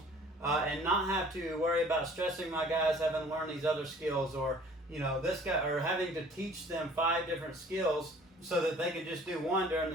and not have to worry about stressing my guys having to learn these other skills, or this guy, or having to teach them 5 different skills so that they can just do one during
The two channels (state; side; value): normal; both; correlation 0.52